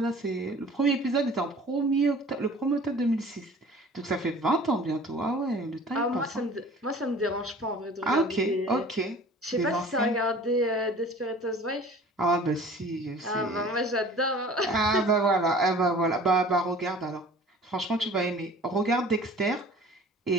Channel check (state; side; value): normal; both; correlation 0.46